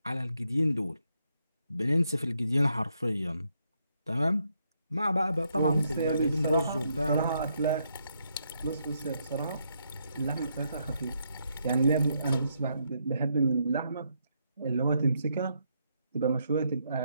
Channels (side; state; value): both; inverted; correlation -0.77